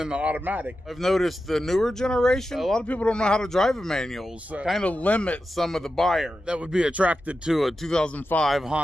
the automatic. I've noticed the newer generation, a lot of people don't know how to drive a manual, so kind of limit some of the buyers that would be attracted to a 2005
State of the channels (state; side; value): normal; both; correlation 0.91